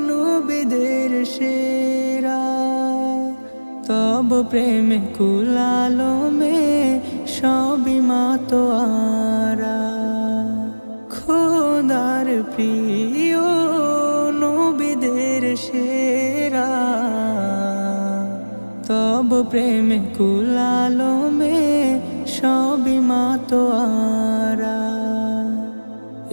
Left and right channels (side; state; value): both; inverted; correlation -1.00